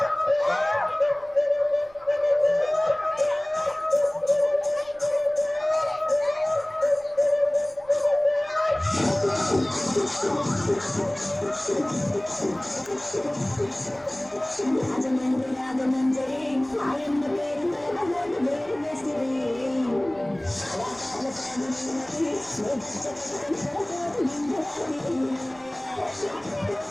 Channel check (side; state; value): right; noise; rumble, 27 dB below the sound